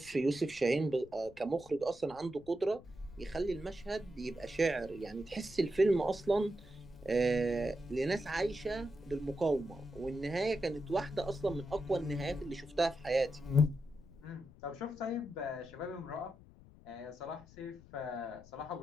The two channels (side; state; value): left; noise; rumble, 22 dB below the sound